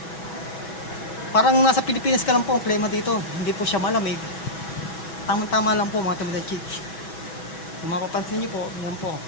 Parang nasa Pilipinas ka lang po ang klima dito. Hindi po siya malamig. Tama-tama lang po mga Tomodachi. Kung mapapansin nyo po, yan po.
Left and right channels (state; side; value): late; right; 6.1 ms